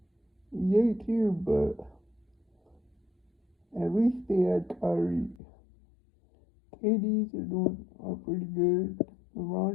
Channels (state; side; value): drops out; right; at 5.4 s